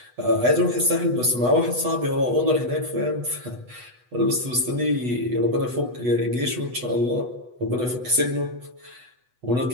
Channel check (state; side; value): late; left; 8.1 ms